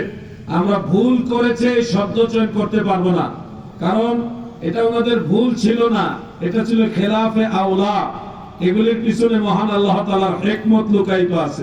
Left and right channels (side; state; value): both; identical; correlation 1.00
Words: আমরা ভুল করেছে শব্দ চয়ন করতে পারবো না, কারণ এটা ওনাদের ভুল ছিল না, এটা ছিল খেলাফে আওলা। এগুলির পিছনে মহান আল্লাহ তাআলার হিকমত লুকায়িত